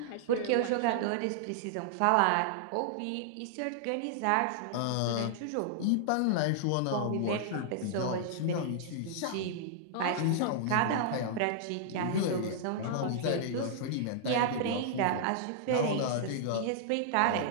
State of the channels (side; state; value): both; different; correlation -0.01